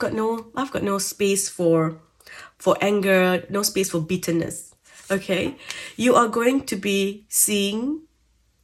no space for anger, no space for bitterness. Okay? You are going to be seeing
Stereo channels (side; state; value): both; identical; correlation 1.00